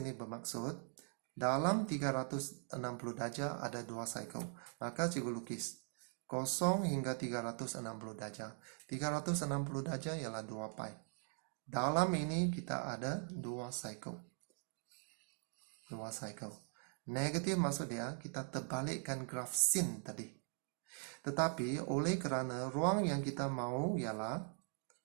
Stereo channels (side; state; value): left; silent; 50 dB below the other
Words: ini bermaksud dalam 360 darjah ada 2 cycle. Maka cikgu lukis 0 hingga 360 darjah. 360 darjah ialah 2 pi. Dalam ini kita ada 2 cycle. 2 cycle. Negatif maksud dia kita terbalikkan graf sin tadi. Tetapi oleh kerana ruang yang kita mau ialah